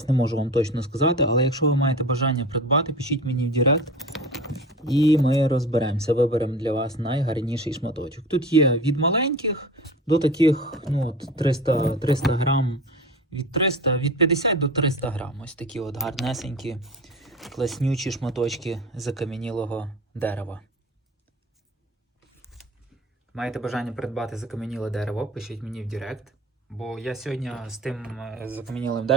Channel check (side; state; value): both; normal; correlation 0.34